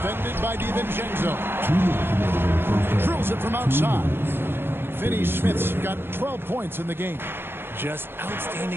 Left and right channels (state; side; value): late; left; 0.10 ms